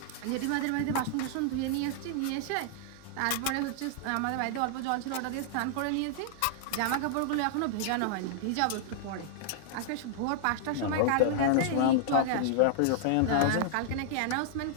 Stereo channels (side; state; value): both; different; correlation -0.01